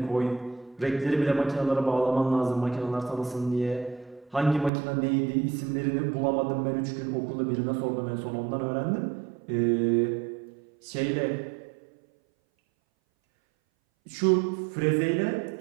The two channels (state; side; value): drops out; left; at 4.7 s